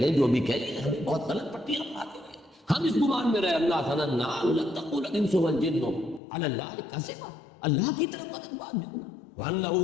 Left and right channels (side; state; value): right; drops out; at 6.2 s